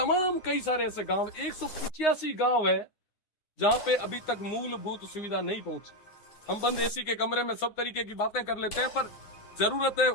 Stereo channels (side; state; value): right; late; 9.7 ms